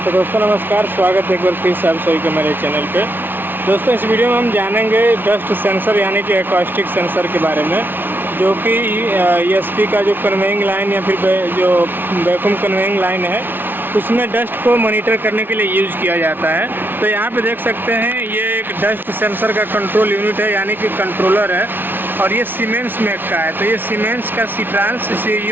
तो दोस्तों नमस्कार, स्वागत है एक बार फिर से आप सभी के मेरे चैनल पे। दोस्तों इस वीडियो में हम जानेंगे डस्ट सेंसर यानी कि एकॉस्टिक सेंसर के बारे में, जो कि ईएसपी का जो कन्वेइंग लाइन या फिर जो वैक्यूम कन्वेइंग लाइन है उसमें डस्ट को मॉनिटर करने के लिए यूज़ किया जाता है। तो यहाँ पे देख सकते हैं ये एक डस्ट सेंसर का कंट्रोल यूनिट है यानी कि कंट्रोलर है, और ये सीमेंस मेक का है। तो ये सीमेंस का सीट्रांस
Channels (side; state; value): left; late; 0.098 ms